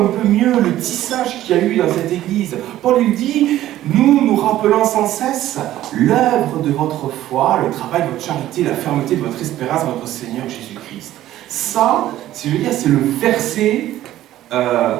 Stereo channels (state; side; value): quieter; left; 13.8 dB